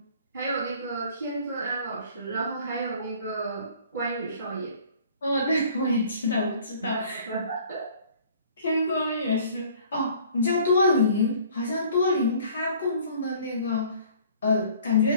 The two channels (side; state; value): both; inverted; correlation -0.53